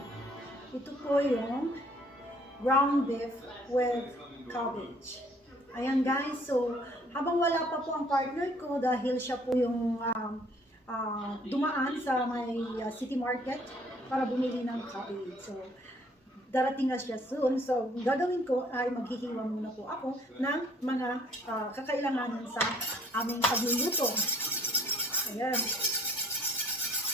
Ito po yung ground beef with cabbage. Ayan, guys. So, habang wala pa po ang partner ko dahil siya po yung dumaan sa may city market para bumili ng cabbage. So, darating na siya soon. So, gagawin ko ay maghihiwa muna po ako ng mga kakailanganan sa aming pagluluto. Ayan.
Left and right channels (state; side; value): normal; both; correlation 0.59